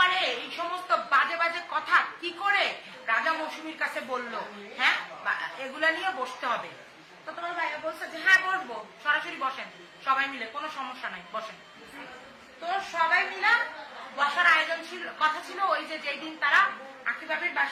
এই সমস্ত বাজে বাজে কথা কি করে রাজা মৌসুমীর কাছে বললো, হ্যাঁ এগুলা নিয়ে বসতে হবে। তো তোমার ভাইয়া বলছে যে হ্যাঁ বসবো, সরাসরি বসেন সবাই মিলে, কোনো সমস্যা নাই, বসেন। তো সবাই মিলে বসার আয়োজন ছিল, কথা ছিল ওই যে যেই দিন তারা আকিবাবির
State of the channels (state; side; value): identical; both; correlation 1.00